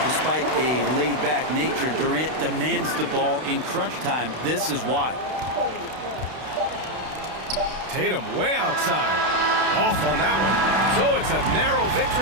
Despite a laid-back nature, Durant demands the ball in crunch time. This is why. Tatum way outside. Off on that one. So it's a narrow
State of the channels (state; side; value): late; left; 32 ms